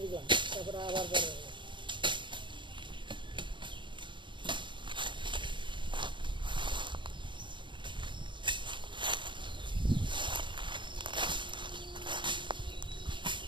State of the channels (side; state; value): left; late; 0.23 ms